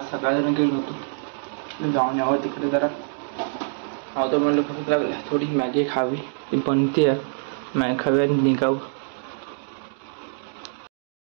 सकाळी गेलो होतो. जाऊन यावं तिकडे जरा नव्हतं म्हणलं भूक लागली, थोडी मॅगी खावी. ती बनते मॅगी खावी आणि निघावं.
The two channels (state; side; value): silent; left; 62 dB below the other